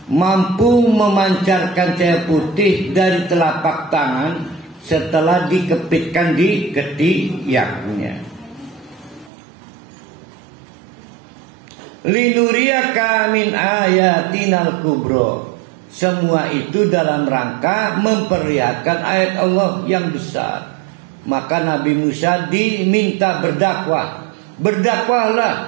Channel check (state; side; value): drops out; left; at 9.3 s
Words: mampu memancarkan cahaya putih dari telapak tangan setelah dikepitkan di ketiaknya. Linuriyaka min ayatinal kubro. Semua itu dalam rangka memperlihatkan ayat Allah yang besar. Maka Nabi Musa diminta berdakwah.